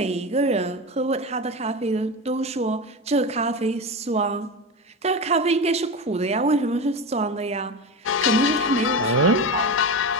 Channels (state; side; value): normal; both; correlation 0.22